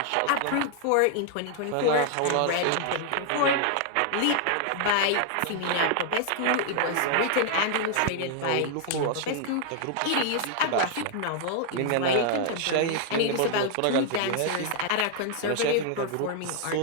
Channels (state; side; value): different; both; correlation 0.00